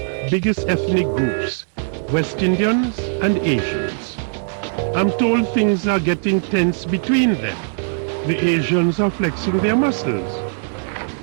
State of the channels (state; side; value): silent; left; digital silence